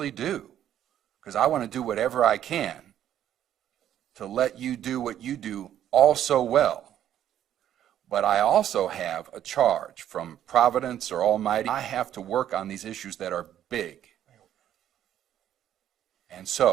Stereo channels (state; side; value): quieter; left; 10.9 dB